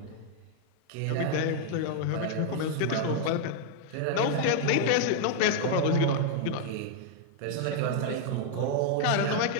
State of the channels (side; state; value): both; different; correlation 0.00